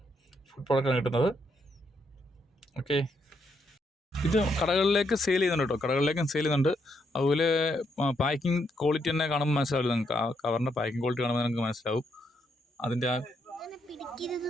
ഫുഡ് പ്രോഡക്റ്റാണ് കിട്ടുന്നത്. ഓക്കെ, ഇത് കടകളിലേക്ക് സെയിൽ ചെയ്യുന്നുണ്ട് കേട്ടോ. കടകളിലേക്കും സെയിൽ ചെയ്യുന്നുണ്ട്. അതുപോലെ പാക്കിംഗ് ക്വാളിറ്റി തന്നെ കാണുമ്പോൾ മനസ്സിലാവില്ല നിങ്ങൾക്ക്. ആ കവറിൻ്റെ പാക്കിംഗ് ക്വാളിറ്റി കാണുമ്പോൾ നിങ്ങൾക്ക് മനസ്സിലാവും. അതിൻ്റെ ആ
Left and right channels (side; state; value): both; normal; correlation 0.77